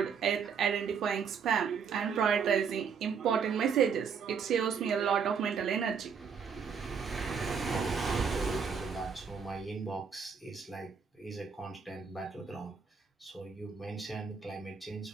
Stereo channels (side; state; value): left; quieter; 6.3 dB